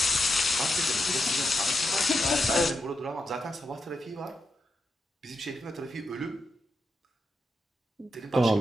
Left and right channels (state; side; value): normal; both; correlation 0.85